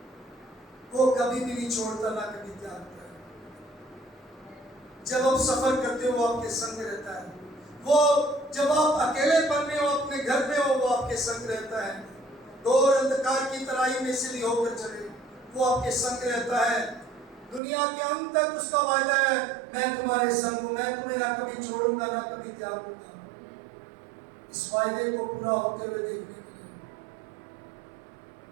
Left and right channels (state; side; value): drops out; left; at 17.6 s